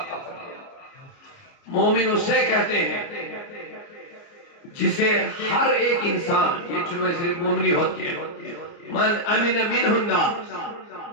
کا فرمان۔ مومن اسے کہتے ہیں جسے ہر ایک انسان، یہ چنوے صرف مومنی ہوتی ہے، من امن منہ الناس،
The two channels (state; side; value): late; right; 29 ms